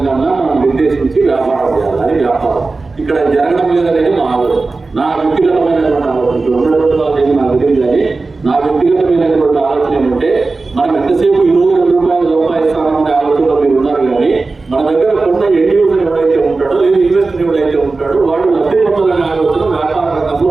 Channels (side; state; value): left; quieter; 3.7 dB